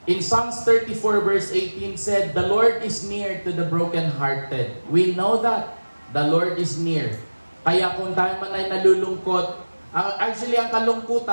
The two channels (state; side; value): inverted; both; correlation -1.00